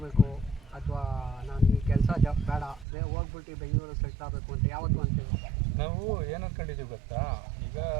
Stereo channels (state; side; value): drops out; left; at 2.9 s